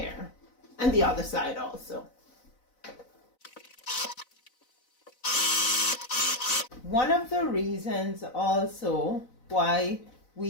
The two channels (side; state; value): right; late; 4.0 ms